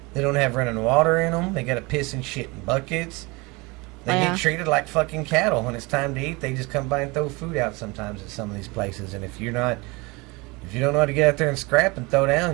They don't have running water in them. They got to piss and shit in buckets. They get treated like fucking cattle. When it's time to eat, they just come by and throw food out sometimes at some of these places. And if you don't know how to get out there and scrap and throw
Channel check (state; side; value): quieter; left; 25.7 dB